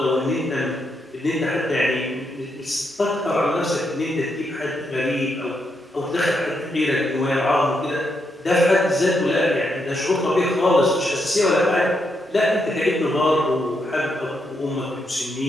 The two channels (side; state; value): both; normal; correlation 0.80